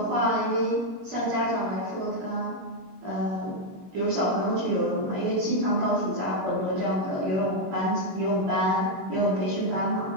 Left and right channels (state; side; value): late; left; 21 ms